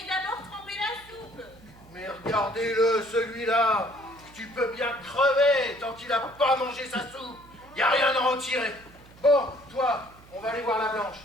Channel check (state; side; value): noise; right; hum, 23 dB below the sound